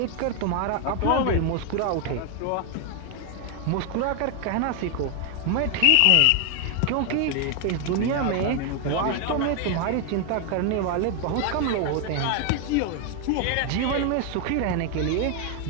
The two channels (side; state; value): both; different; correlation 0.01